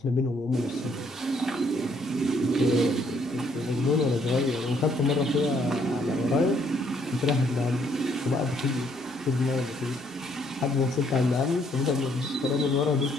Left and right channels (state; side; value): normal; both; correlation 0.68